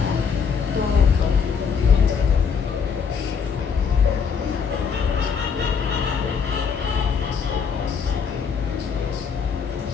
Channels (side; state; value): right; quieter; 6.2 dB